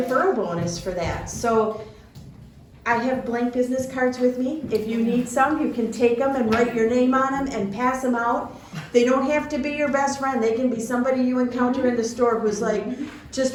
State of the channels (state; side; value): identical; both; correlation 1.00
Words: bonus for that. So I have blank business cards with me. If you need some, you can take them and write your name on them and pass them out. They don't have to be your best friend. They can be somebody you encounter in the store who's like just